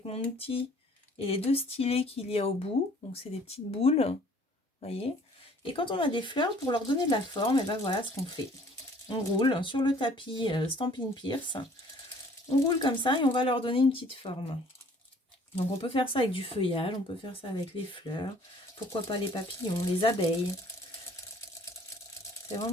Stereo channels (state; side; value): normal; both; correlation 0.56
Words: mon outil et les 2 stylets qu'il y a au bout. Donc, c'est des petites boules. Vous voyez. Et quand on a des fleurs, pour leur donner de la forme, et ben voilà ce qu'on fait. On roule sur le tapis Stampin' Pierce. On roule comme ça et on va leur donner une petite forme. Donc, on peut faire ça avec du feuillage, on peut faire ça avec les fleurs. Pourquoi pas les papillons, les abeilles. C'est